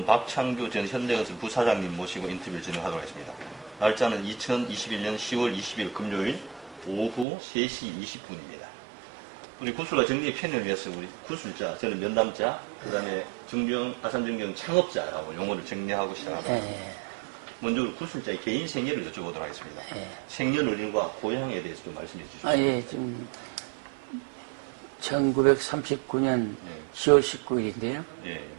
박창규 전 현대건설 부사장님 모시고 인터뷰를 진행하도록 하겠습니다. 날짜는 2021년 10월 20일 금요일 오후 3시 20분입니다. 우리 구술과 정리의 편의를 위해서 우리 구술자, 저는 면담자, 그 다음에 아산정경 창업자라고 용어를 정리하고 시작합니다. 먼저 우리 구술자의 개인 생애를 여쭤보도록 하겠습니다. 생년월일과 고향에 대해서 좀 말씀해 주시죠. 지금 1939년 10월 19일인데요.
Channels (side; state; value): left; drops out; at 7.2 s